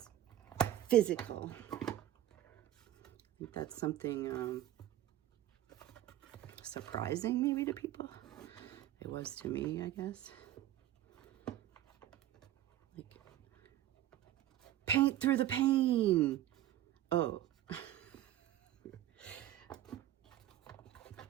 physical. I think that's something surprising maybe to people. It was to me, I guess. Like, paint through the pain. Oh.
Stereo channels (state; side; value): quieter; left; 12.9 dB